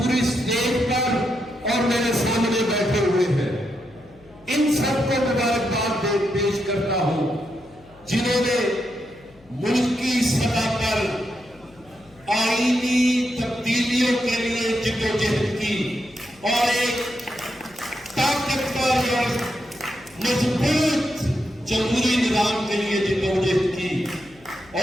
اسٹیج پر اور میرے سامنے بیٹھے ہوئے ہیں، ان سب کو مبارکباد پیش کرتا ہوں جنہوں نے ملکی سطح پر آئینی تبدیلیوں کے لیے جدوجہد کی اور ایک طاقتور اور مضبوط جمہوری نظام کے لیے جدوجہد کی،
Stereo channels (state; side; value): noise; left; hum, 27 dB below the sound